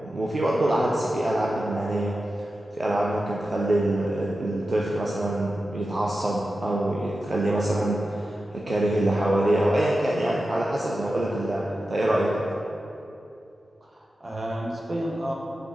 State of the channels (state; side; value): normal; both; correlation 0.92